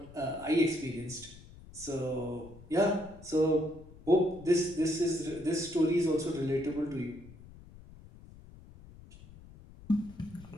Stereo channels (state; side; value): noise; left; rumble, 19 dB below the sound